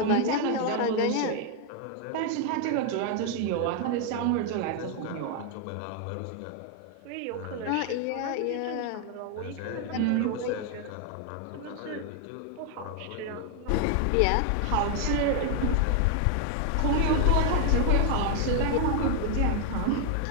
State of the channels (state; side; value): different; both; correlation 0.01